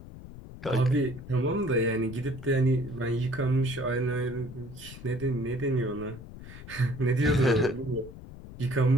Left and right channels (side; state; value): left; noise; rumble, 15 dB below the sound